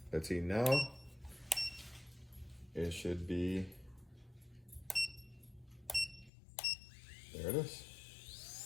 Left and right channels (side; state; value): right; drops out; at 6.3 s